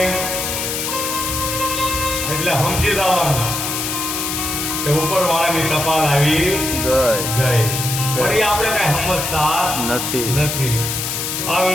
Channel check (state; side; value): noise; left; hiss, 3 dB below the sound